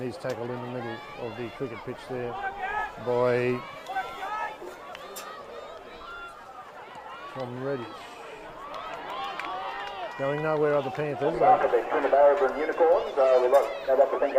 tackled in the middle of the cricket pitch there by Tom Reddish. Going nowhere are the Panthers. After the Castlereagh and Unicorns, I'd like to thank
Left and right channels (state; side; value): identical; both; correlation 1.00